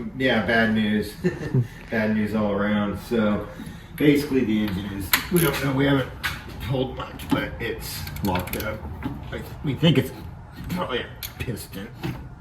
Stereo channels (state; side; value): identical; both; correlation 1.00